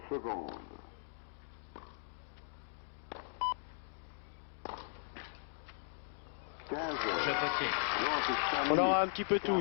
secondes. 15h, Jeu potier. 35 On minutes. aura un petit peu tout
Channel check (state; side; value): silent; right; digital silence